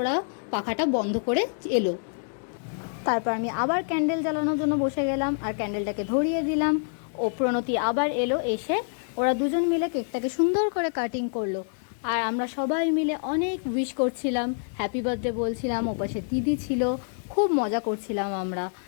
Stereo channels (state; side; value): silent; right; digital silence